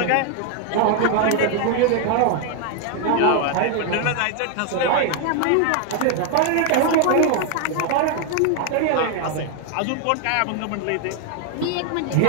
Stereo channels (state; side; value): different; both; correlation 0.00